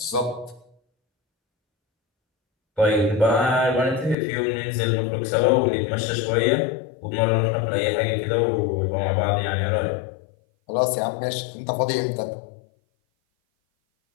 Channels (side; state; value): right; drops out; at 4.2 s